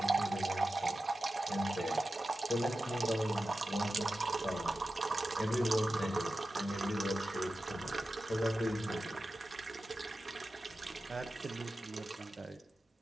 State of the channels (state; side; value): normal; both; correlation 0.93